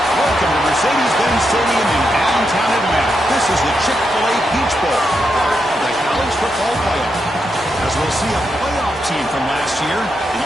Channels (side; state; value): both; normal; correlation 0.83